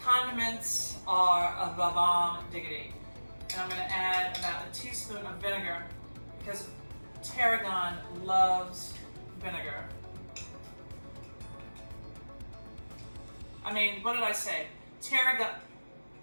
are a bomb diggity. And I'm going to add about a teaspoon of vinegar because Tarragon loves vinegar. I mean, what did I say? Tarragon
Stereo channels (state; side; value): inverted; both; correlation -1.00